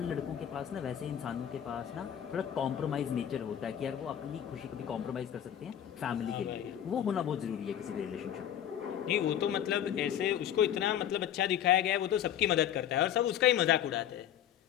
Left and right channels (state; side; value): quieter; right; 10.3 dB